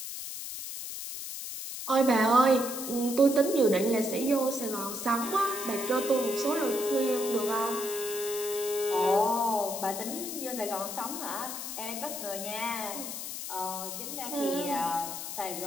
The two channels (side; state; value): left; noise; hiss, 7 dB below the sound